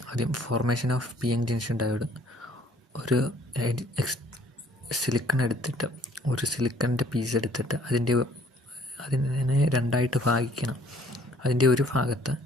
ആദ്യം formation of P N junction diode. ഒരു സിലിക്കൺ എടുത്തിട്ട്, ഒരു സിലിക്കണിൻ്റെ പീസ് എടുത്തിട്ട് അതിനെ രണ്ടായിട്ട് ഭാഗിക്കണം. അതിൻ്റെ ഒരു ഭാഗത്ത്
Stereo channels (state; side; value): normal; both; correlation 0.59